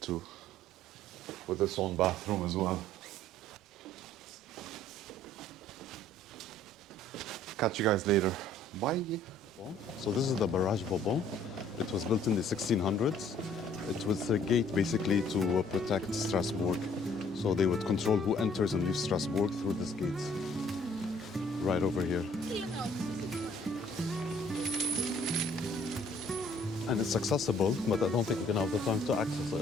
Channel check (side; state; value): both; normal; correlation 0.58